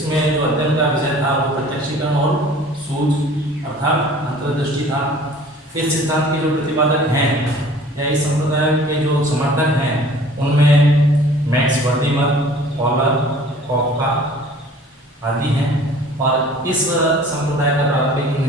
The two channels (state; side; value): normal; both; correlation 0.49